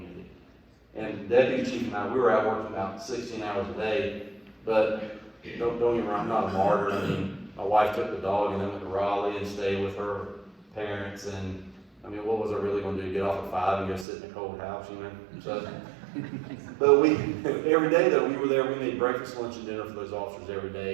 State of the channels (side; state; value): left; drops out; at 14.1 s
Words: And Deputy Chief and I, we were out working about 16 hours a day, but don't get me wrong, I'm not a martyr. I mean, my wife took the dog and then went to Raleigh and stayed with her parents, and I mean, what was I really going to do? Get off at 5 and go sit in a cold house, you know? So, but every day though, we were there. We made breakfast, lunch, and dinner for those officers every